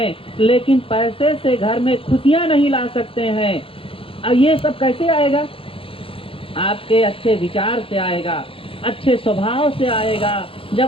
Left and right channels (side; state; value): right; late; 0.26 ms